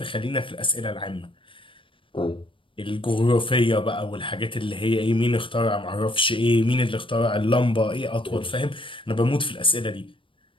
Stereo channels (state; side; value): late; right; 0.25 ms